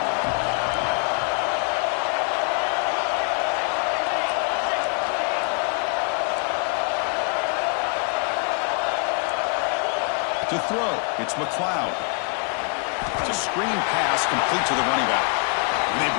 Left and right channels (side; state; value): right; quieter; 38.4 dB